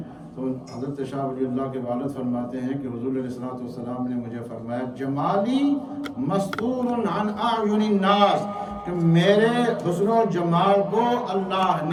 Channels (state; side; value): identical; both; correlation 1.00